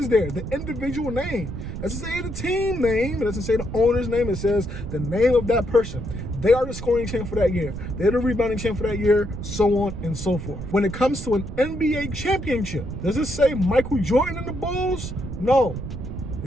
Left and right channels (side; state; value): right; noise; rumble, 8 dB below the sound